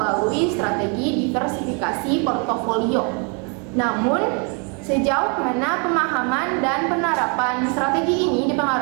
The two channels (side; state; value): left; quieter; 36.3 dB